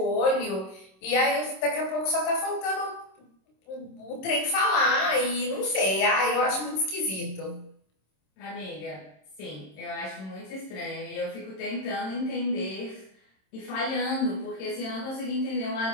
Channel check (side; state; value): right; late; 26 ms